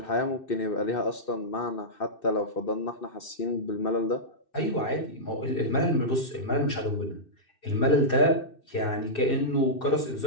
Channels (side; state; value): right; late; 2.6 ms